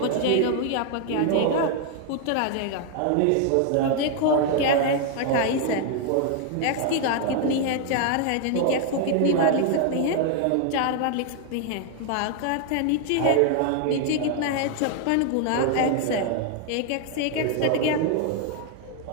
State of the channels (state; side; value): different; both; correlation 0.00